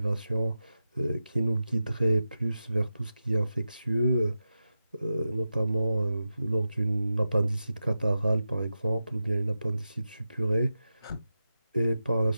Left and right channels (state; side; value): inverted; both; correlation -0.91